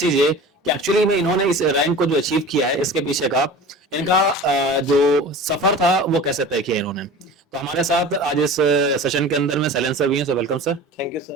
चीज ये कि एक्चुअली में इन्होंने इस रैंक को जो अचीव किया है इसके पीछे का इनका जो सफर था वो कैसे तय किया इन्होंने। तो हमारे साथ आज इस सेशन के अंदर में सैलेंस सर भी हैं। So welcome sir. Thank you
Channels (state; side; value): normal; both; correlation 0.37